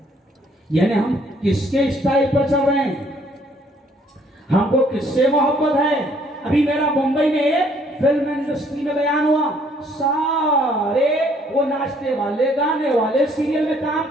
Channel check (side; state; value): both; normal; correlation 0.63